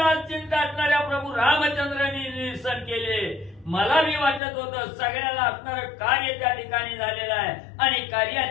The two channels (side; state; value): right; drops out; at 4.4 s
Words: चिंता असणाऱ्या प्रभू रामचंद्रांनी निरसन केले. मला मी वाटत होतं सगळ्याला असणारं कार्य त्या ठिकाणी झालेलं आहे आणि